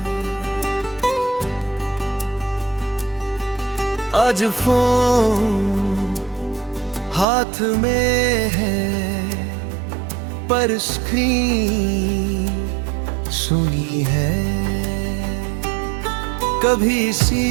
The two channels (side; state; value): left; drops out; at 7.2 s